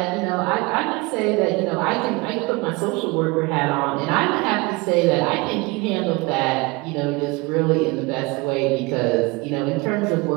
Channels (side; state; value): left; quieter; 25.2 dB